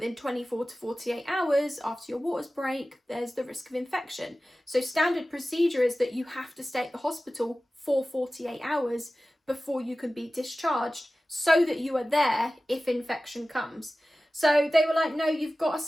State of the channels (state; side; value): normal; both; correlation 0.96